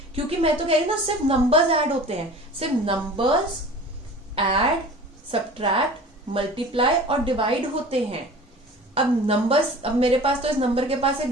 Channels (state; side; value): normal; both; correlation 0.40